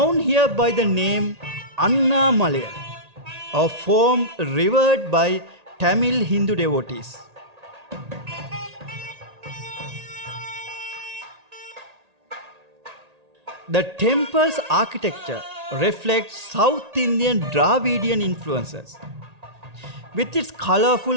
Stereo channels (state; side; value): late; left; 1.8 ms